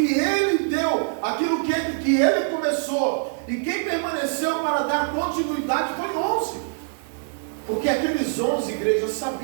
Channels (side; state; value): left; silent; digital silence